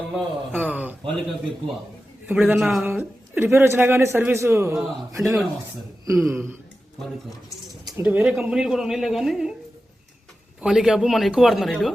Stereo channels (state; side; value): normal; both; correlation 0.93